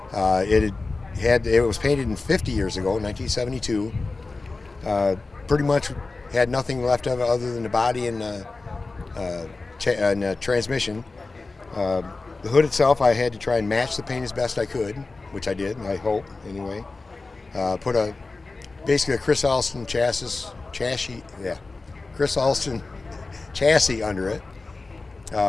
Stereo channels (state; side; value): quieter; right; 3.6 dB